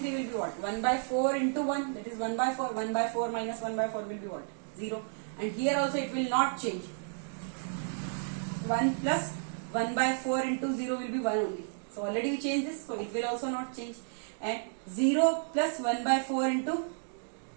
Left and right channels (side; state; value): left; silent; digital silence